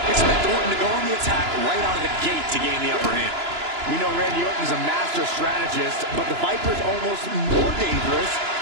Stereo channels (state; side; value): late; left; 2.9 ms